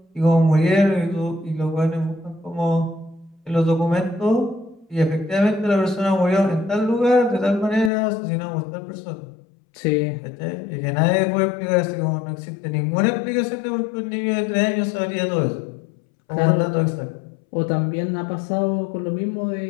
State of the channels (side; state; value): right; drops out; at 7.9 s